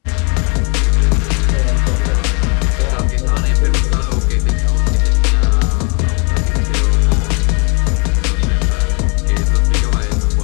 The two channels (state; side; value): quieter; right; 33.8 dB